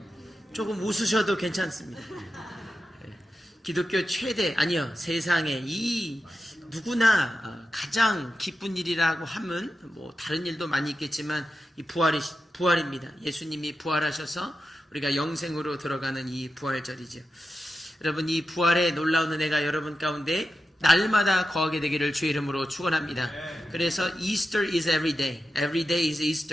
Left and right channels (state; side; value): normal; both; correlation 0.90